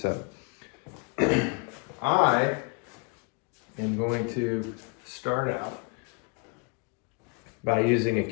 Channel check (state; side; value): quieter; right; 32.3 dB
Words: I am going to start out by using a